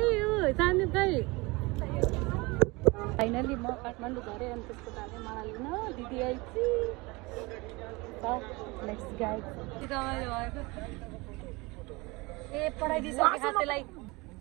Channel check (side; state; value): left; quieter; 24.5 dB